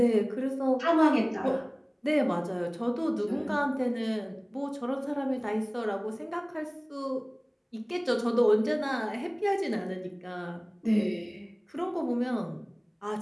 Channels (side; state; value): both; identical; correlation 1.00